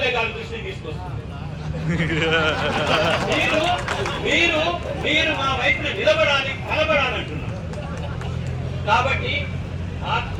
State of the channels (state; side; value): identical; both; correlation 1.00